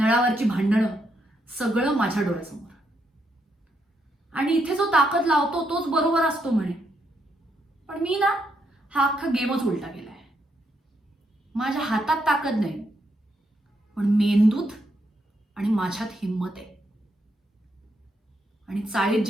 भांडणं सगळं माझ्या डोळ्यासमोर. आणि इथे जो ताकद लावतो तोच बरोबर असतो म्हणे, पण मी ना हा अख्खा गेमच उलटा केलाय. माझ्या हातात ताकद नाही, पण मेंदूत आणि माझ्यात हिंमत आहे. आणि चाळीत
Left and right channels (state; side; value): normal; both; correlation 0.78